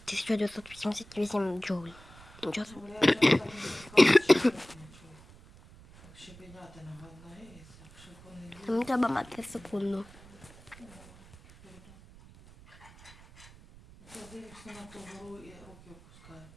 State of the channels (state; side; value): noise; right; rumble, 21 dB below the sound